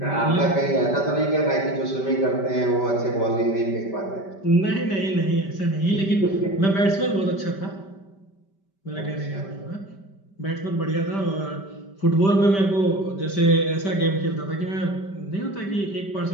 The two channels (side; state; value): right; late; 5.1 ms